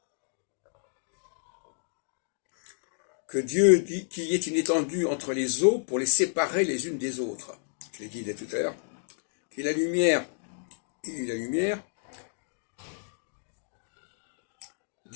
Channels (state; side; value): silent; right; digital silence